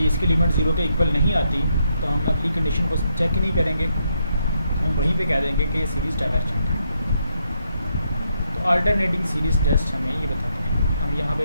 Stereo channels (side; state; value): both; inverted; correlation -0.78